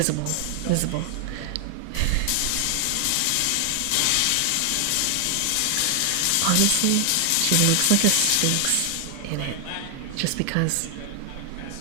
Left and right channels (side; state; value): both; different; correlation 0.00